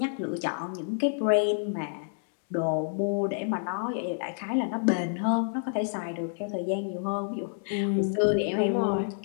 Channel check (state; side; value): silent; right; digital silence